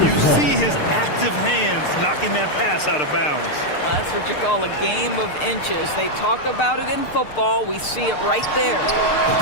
You see his active hands knocking that pass out of bounds. Well, that's what you call a game of inches. They talk about it in football. We see it right there.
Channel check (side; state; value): right; late; 6.6 ms